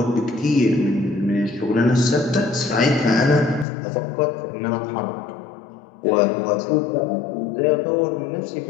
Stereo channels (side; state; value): right; drops out; at 3.7 s